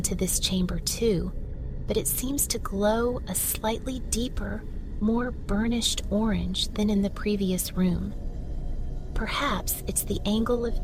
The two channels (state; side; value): identical; both; correlation 1.00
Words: this chamber too, but it seems to glow a slightly deeper, more burnished orange than in the previous room. Perhaps it's the angle of